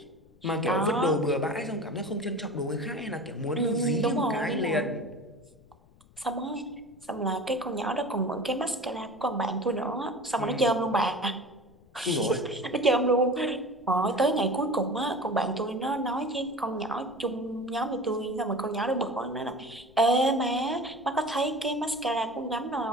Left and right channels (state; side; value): noise; left; rumble, 28 dB below the sound